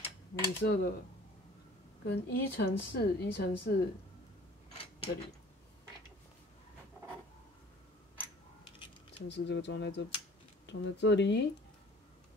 米色的，跟1×4这里，1×4这个装在这里，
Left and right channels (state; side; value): normal; both; correlation 0.49